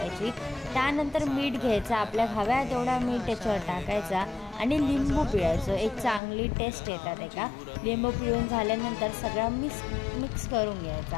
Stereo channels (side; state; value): right; drops out; at 6.2 s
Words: त्यानंतर मीठ घ्यायचं, आपल्या हव्या तेवढा मीठ त्याच्यावर टाकायचा आणि लिंबू पिळायचं. एक चांगली टेस्ट येतात एका. लिंबू पिळून झाल्यानंतर सगळं मिक्स करून